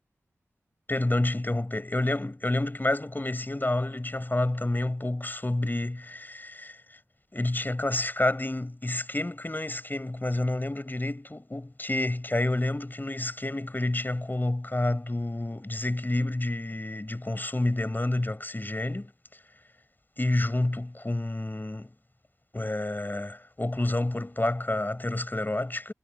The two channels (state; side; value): normal; both; correlation 0.88